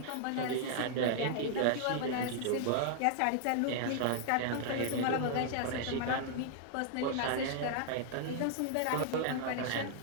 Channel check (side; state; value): both; different; correlation 0.00